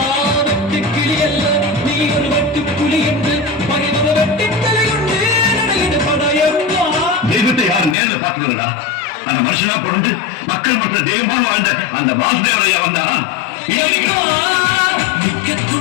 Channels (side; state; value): right; drops out; at 8.0 s